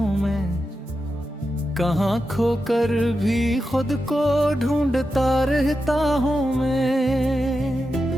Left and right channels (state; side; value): normal; both; correlation 0.90